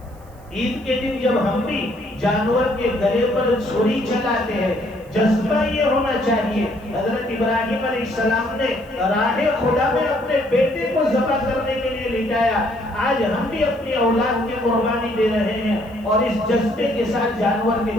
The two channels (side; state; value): right; noise; hiss, 30 dB below the sound